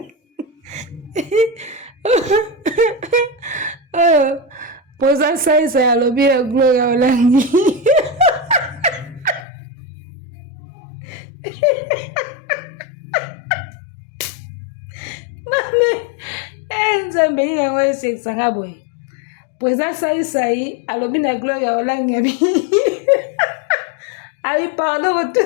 poza saisa ya lobi ya Gloria Olangi mame nzambe nini yango esekisanga boye poza saisai alobi na Gloria Olangi abi pardon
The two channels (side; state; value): right; drops out; at 9.5 s